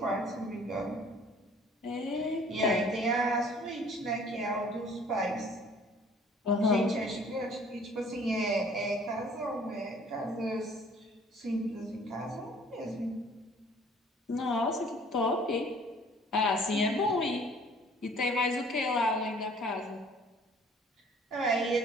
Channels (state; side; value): normal; both; correlation 0.54